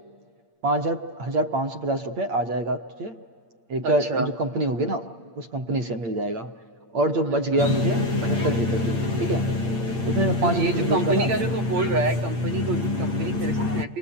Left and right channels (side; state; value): left; late; 8.7 ms